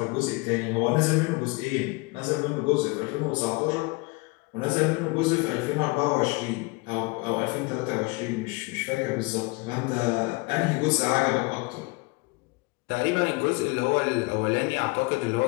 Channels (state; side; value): quieter; right; 26.5 dB